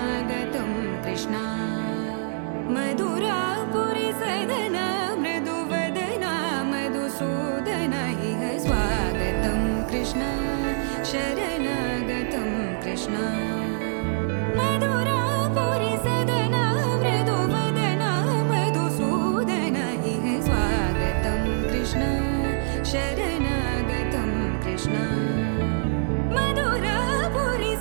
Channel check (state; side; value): silent; left; 58 dB below the other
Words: कृष्ण मधुरापुरी सदन मृदुवदन मधुसूदन इह स्वागतं कृष्ण शरणागतं कृष्ण मधुरापुरी सदन मृदुवदन मधुसूदन इह स्वागतं कृष्ण शरणागतं कृष्ण मधुरापुरी